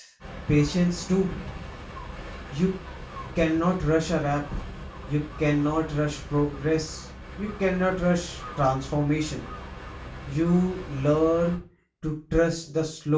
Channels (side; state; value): both; identical; correlation 1.00